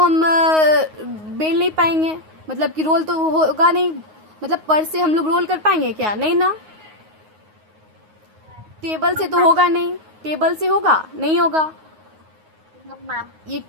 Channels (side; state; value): left; late; 9.5 ms